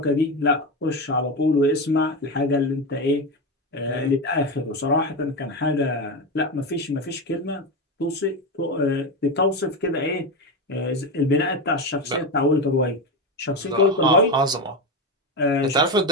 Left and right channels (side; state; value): both; normal; correlation 0.15